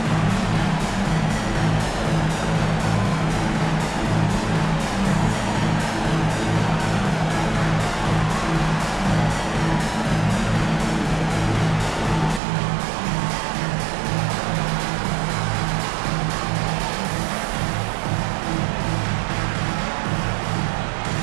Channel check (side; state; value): left; drops out; at 12.4 s